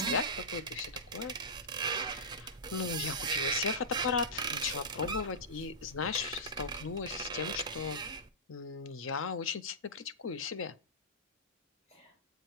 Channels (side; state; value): both; normal; correlation -0.16